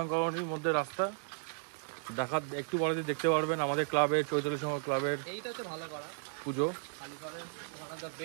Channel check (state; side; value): silent; left; 55 dB below the other